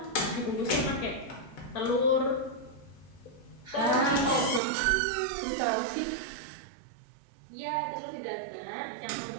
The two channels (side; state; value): left; drops out; at 4.6 s